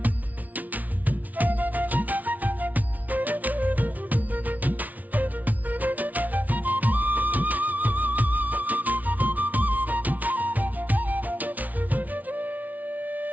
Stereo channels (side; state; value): left; late; 0.075 ms